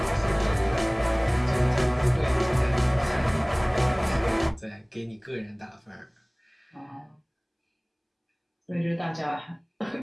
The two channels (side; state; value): both; identical; correlation 1.00